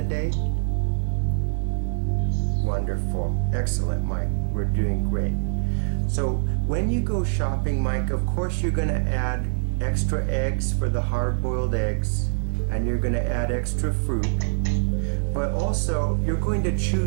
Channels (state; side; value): silent; left; digital silence